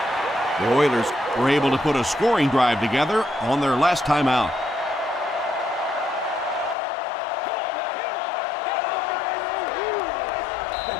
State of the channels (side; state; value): right; drops out; at 6.8 s